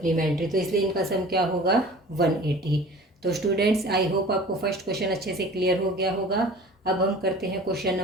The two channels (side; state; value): both; normal; correlation 0.43